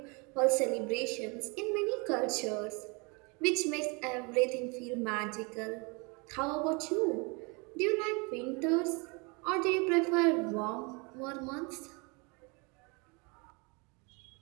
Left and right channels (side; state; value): left; quieter; 30.4 dB